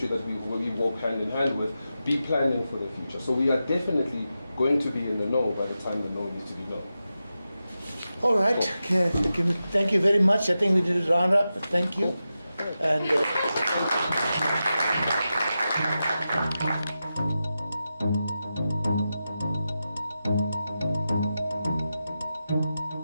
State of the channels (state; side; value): inverted; both; correlation -0.91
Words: that we walk hand in hand with, be planning for the future? So we are definitely going to be in the know by the time the know needs to be known. All right. Okay. Thank you very much. I think we did a round up. Thank you. And